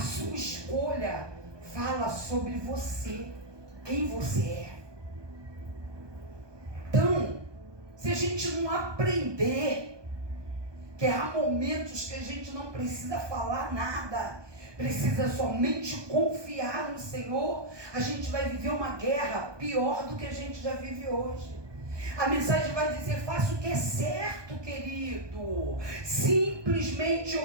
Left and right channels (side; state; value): left; late; 1.2 ms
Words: escolha fala sobre você, quem você é. Então, se a gente não aprender que há momentos que a gente não precisa falar nada, precisa somente confiar no Senhor, a gente vai viver uma guerra pior do que a gente já vive hoje. A mensagem vai dizer: faça o que é certo, querido. Simplesmente